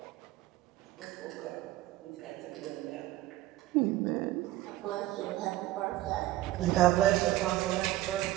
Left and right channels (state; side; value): quieter; left; 15.7 dB